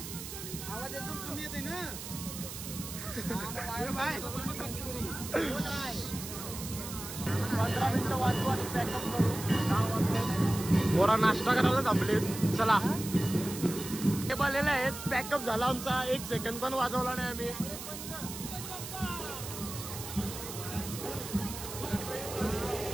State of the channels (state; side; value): noise; right; hiss, 9 dB below the sound